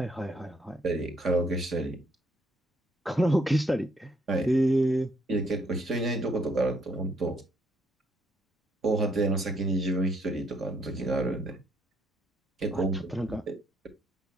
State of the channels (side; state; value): both; normal; correlation 0.70